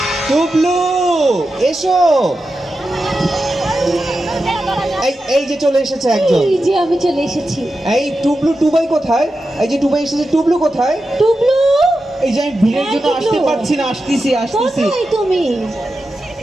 টুবলু এসো। এই এই যে চলে এসেছে একজন। এই যে আমি চলে এসেছি। এই টুবলু, টুবাই কোথায়? এই যে টুবাই এসেছে, টুবলু কোথায়? টুবলু, এই যে আমি ভিড়ের হ্যাঁ, জন্য আসতে টুকলু। পারছি না, আসতেছি আসতেছি। কোথায় তুমি?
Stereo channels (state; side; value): normal; both; correlation 0.90